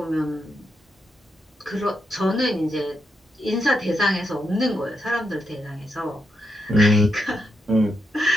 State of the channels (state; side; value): normal; both; correlation 0.83